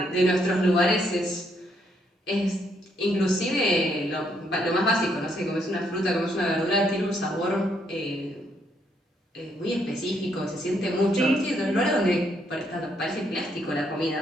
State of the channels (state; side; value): normal; both; correlation 0.73